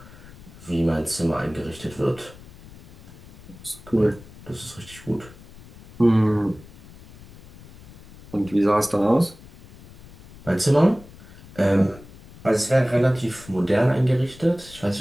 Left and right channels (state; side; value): noise; left; rumble, 20 dB below the sound